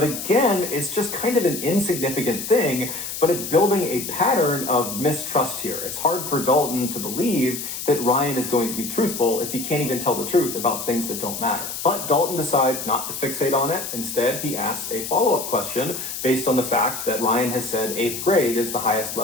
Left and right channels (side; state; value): left; noise; hiss, 6 dB below the sound